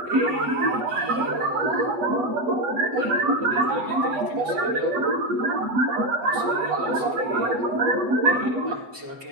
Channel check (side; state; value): left; late; 7.9 ms